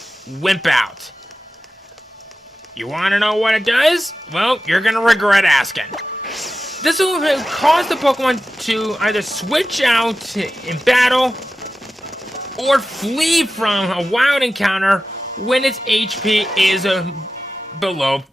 Wimp Out. You want to know what it does? Well, you're going to regret asking. This will cause the Pokemon to either switch out in battle or flee from a wild encounter when its HP is below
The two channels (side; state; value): both; normal; correlation 0.93